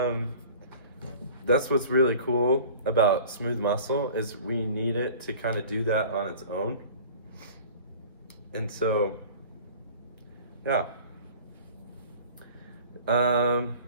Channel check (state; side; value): inverted; both; correlation -0.44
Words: that's what's really cool about smooth muscle, is we need it to kind of do that on its own. And so, yeah. I'm